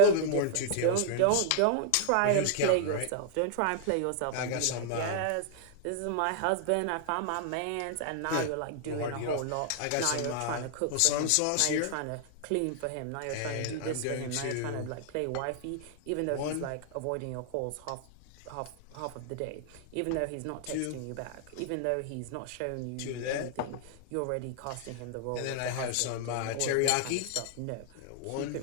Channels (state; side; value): different; both; correlation 0.00